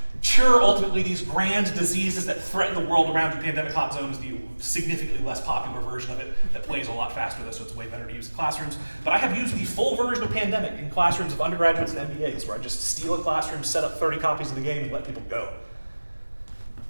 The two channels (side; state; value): both; inverted; correlation -1.00